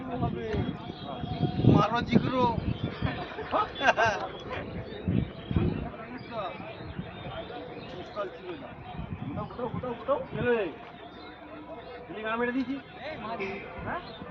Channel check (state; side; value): identical; both; correlation 1.00